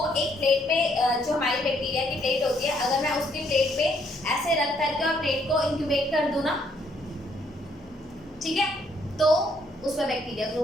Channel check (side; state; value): both; normal; correlation 0.69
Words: एक प्लेट पे, जो हमारी बैक्टीरिया की प्लेट होती है, अगर मैं उसकी प्लेट पे ऐसे रख करके और प्लेट को इंक्यूबेट कर दूं ना, ठीक है, तो उसमें बैक्टीरिया